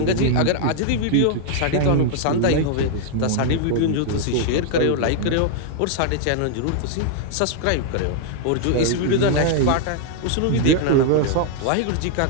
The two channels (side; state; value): both; different; correlation -0.01